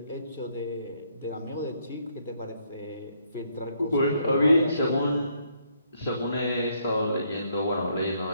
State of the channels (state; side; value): inverted; both; correlation -0.71